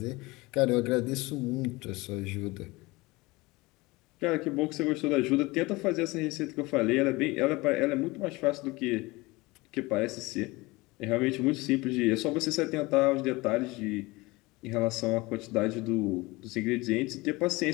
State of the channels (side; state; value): right; quieter; 22.4 dB